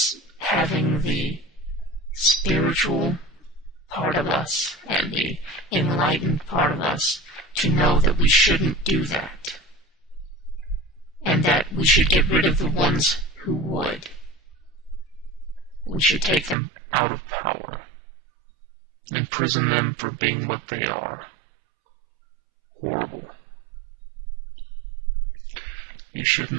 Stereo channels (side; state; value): left; drops out; at 16.6 s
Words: having the spiritual part of us and the enlightened part of us to know that we shouldn't do that, and that we should get rid of the ones who would. We should take them out of power, imprison them for being what they are. Horrible. You